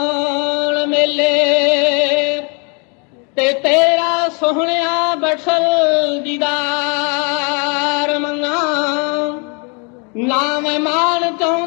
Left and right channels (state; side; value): quieter; right; 34.9 dB